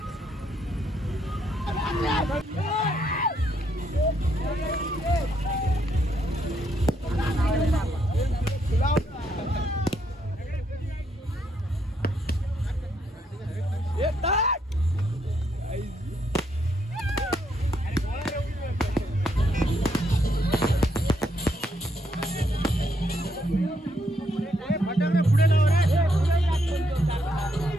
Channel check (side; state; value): both; normal; correlation 0.75